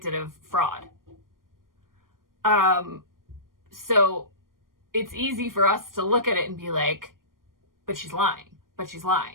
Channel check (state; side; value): late; left; 0.91 ms